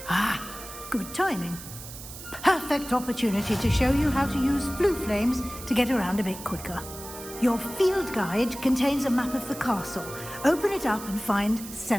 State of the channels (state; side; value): noise; right; hiss, 13 dB below the sound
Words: Ah, good timing. Perfect opportunity to show you how to use flue flames to get around a bit quicker. Your field guide contains a map of the castle. Open it up and find